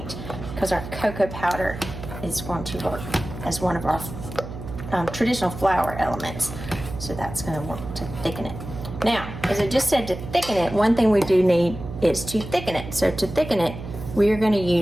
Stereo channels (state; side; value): noise; right; hum, 10 dB below the sound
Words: because our cocoa powder is going to work as one of our traditional flour elements. So that's going to work to thicken it. Now, as I just said, to thicken it, one thing we do need is to thicken it. So to thicken it, we are going to